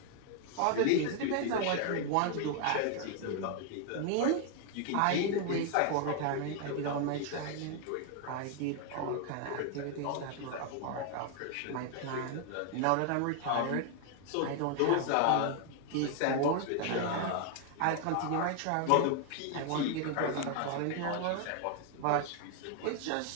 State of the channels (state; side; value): different; both; correlation 0.00